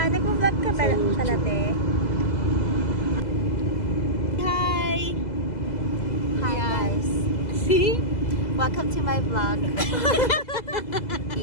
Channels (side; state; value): right; late; 2.0 ms